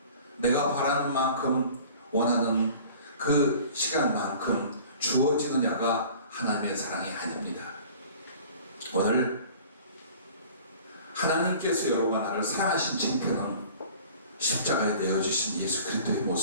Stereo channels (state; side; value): inverted; both; correlation -0.46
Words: 내가 바라는 만큼 원하는 그 시간만큼 주어지느냐가 하나님의 사랑이 아닙니다. 오늘 하나님께서 여러분과 나를 사랑하신 칭표는 십자가에 내어주신 예수 그리스도의